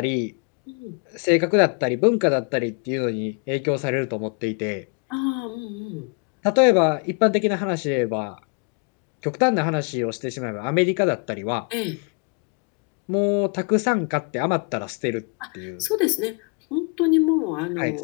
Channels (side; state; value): right; quieter; 36.1 dB